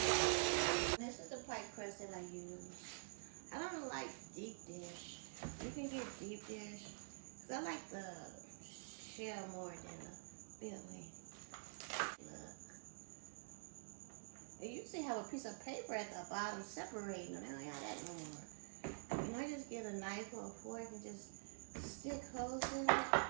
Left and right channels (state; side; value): silent; left; digital silence